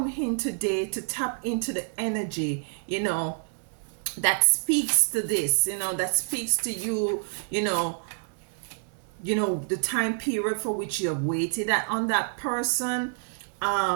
in today to tap into the energy, that speaks to this, that speaks to you, the time period for which you have waited on that person.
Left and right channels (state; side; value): silent; left; 60 dB below the other